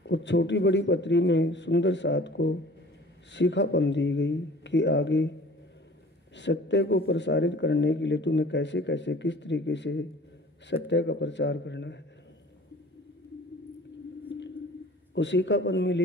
और छोटी बड़ी पत्री में सुंदर साथ को सीखापन दी गई कि आगे सत्य को प्रसारित करने के लिए तुम्हें कैसे कैसे किस तरीके से सत्य का प्रचार करना है। वो सीखापन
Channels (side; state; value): both; normal; correlation 0.47